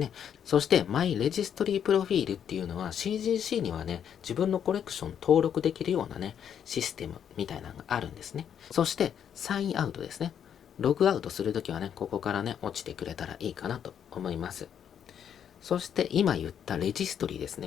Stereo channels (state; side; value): quieter; right; 8.7 dB